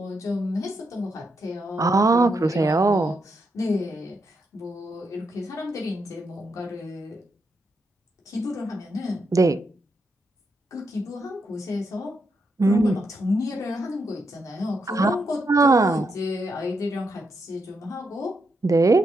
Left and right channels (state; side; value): normal; both; correlation 0.81